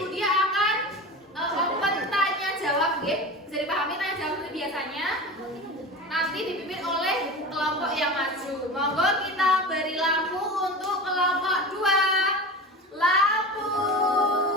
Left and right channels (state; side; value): normal; both; correlation 0.30